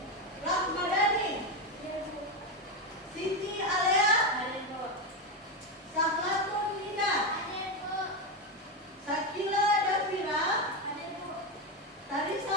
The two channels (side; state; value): both; normal; correlation 0.11